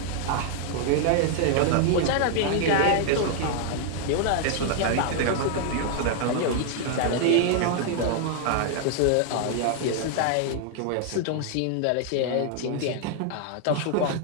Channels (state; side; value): different; both; correlation 0.00